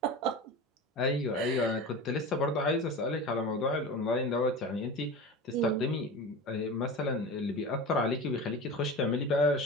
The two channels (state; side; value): normal; both; correlation 0.31